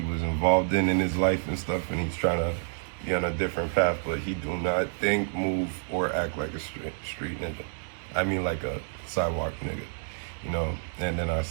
was involved in his life and stuff, and he's trying to be on a different path, but he do not think, move, or act like a street ninja. I mean, like a sidewalk nigga, you know? And then I've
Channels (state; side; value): silent; left; digital silence